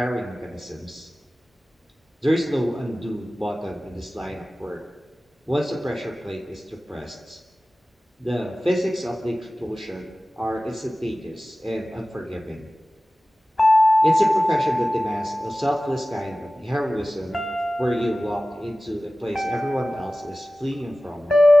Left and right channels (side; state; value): both; normal; correlation 0.97